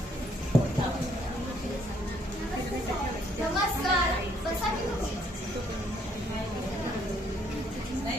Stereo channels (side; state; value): both; normal; correlation 0.67